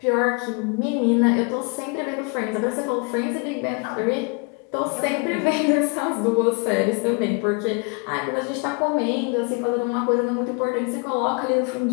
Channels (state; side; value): quieter; right; 32.0 dB